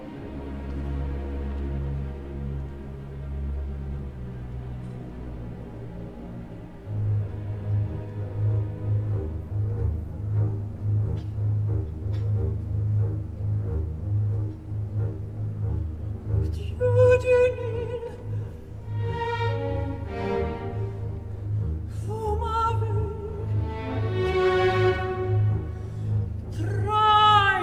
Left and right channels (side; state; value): both; identical; correlation 1.00